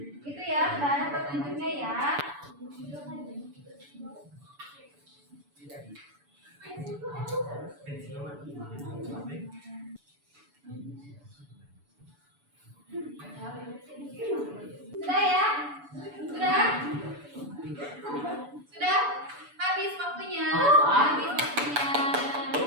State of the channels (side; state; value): left; late; 6.9 ms